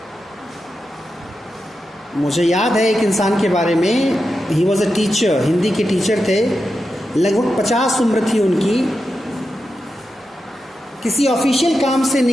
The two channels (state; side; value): normal; both; correlation 0.89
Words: मुझे याद है एक इंसान के बारे में, he was a teacher, Hindi के टीचर थे, लगभग 50 उम्र थी उनकी। किसी ऑफिशियल काम से